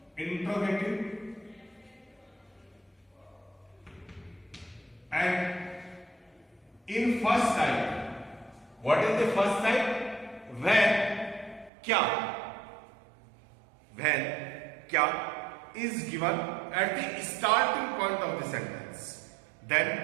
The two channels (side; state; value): left; drops out; at 11.7 s